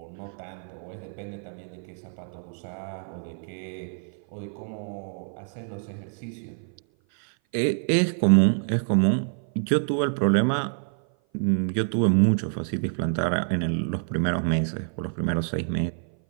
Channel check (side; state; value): left; silent; 56 dB below the other